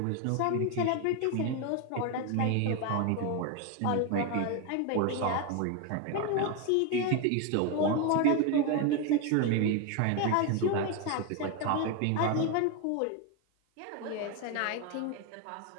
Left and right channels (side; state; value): both; different; correlation 0.02